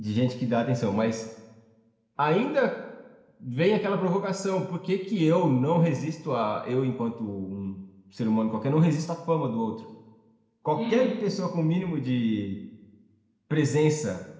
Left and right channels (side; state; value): both; identical; correlation 1.00